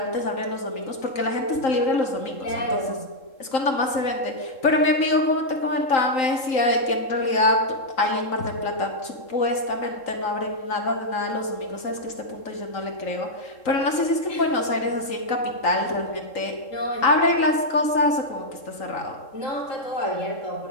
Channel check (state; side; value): late; right; 3.8 ms